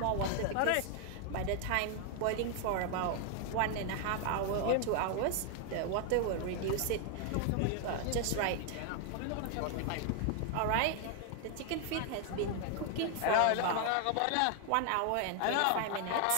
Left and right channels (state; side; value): different; both; correlation 0.00